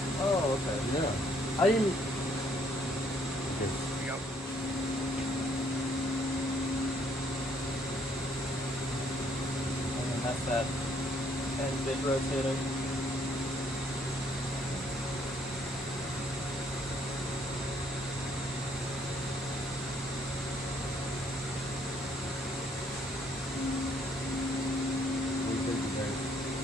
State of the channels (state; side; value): normal; both; correlation 0.67